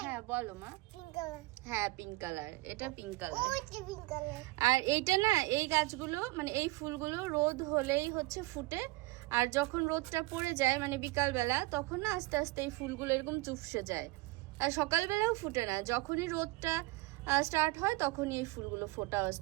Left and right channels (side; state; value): left; quieter; 21.6 dB